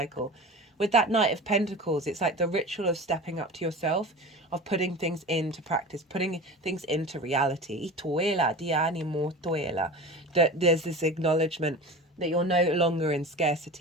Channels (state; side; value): normal; both; correlation 0.33